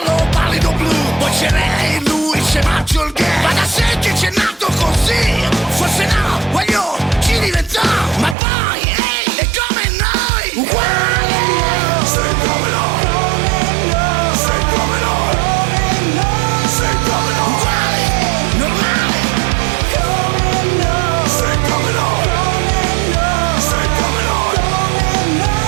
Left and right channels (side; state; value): left; drops out; at 8.3 s